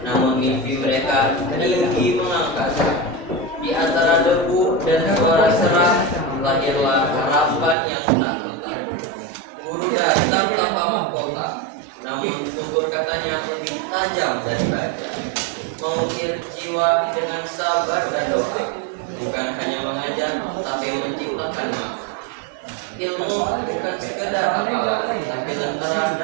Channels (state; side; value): drops out; left; at 7.8 s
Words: namun mimpi mereka tinggi mengangkasa. Di antara debu dan suara serak, lahirlah harapan yang tak letak. Guru datang tanpa mahkota, namun tutur katanya lebih tajam dari baja. Mengukir jiwa dengan sabar dan doa, bukan hanya mengajar, tapi menciptakan makna. Ilmu bukan sekedar hafalan, tapi lentera